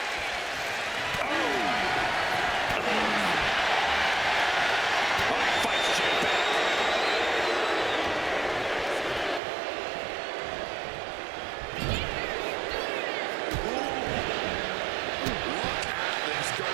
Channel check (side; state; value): left; drops out; at 9.4 s